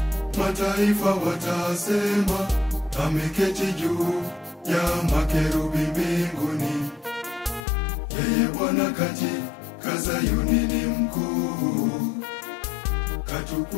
mataifa watasema, ameketi juu ya makerubi mbinguni. Yeye Bwana katika Zayuni ni mkuu,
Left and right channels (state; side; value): drops out; right; at 7.7 s